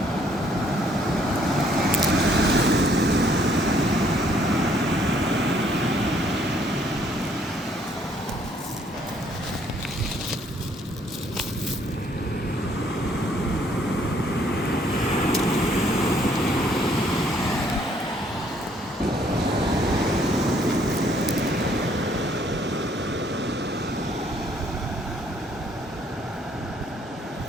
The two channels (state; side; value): normal; both; correlation 0.65